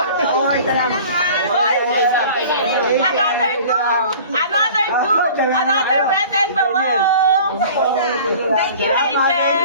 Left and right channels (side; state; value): both; inverted; correlation -0.44